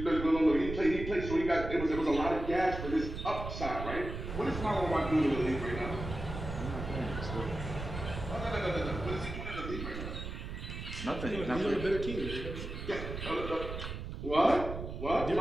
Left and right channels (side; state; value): right; noise; rumble, 7 dB below the sound